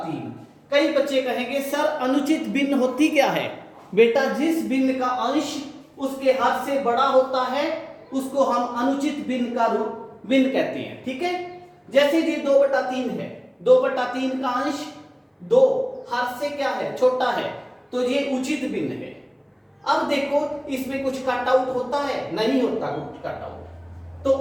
कई बच्चे कहेंगे सर अनुचित भिन्न होती क्या है। बेटा जिस भिन्न का अंश उसके हद से बड़ा होता है उसको हम अनुचित भिन्न का भिन्न कहते हैं, ठीक है। जैसे ये 2/3 है, 2/3 का अंश 2 हद से क्या है, छोटा है, तो ये उचित भिन्न है। अब देखो इसमें कुछ कट आउट होता है, नहीं होता कुछ कट आउट। तो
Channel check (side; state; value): both; identical; correlation 1.00